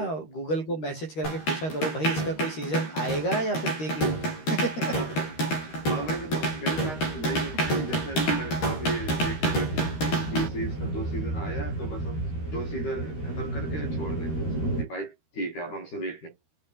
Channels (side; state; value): right; late; 13 ms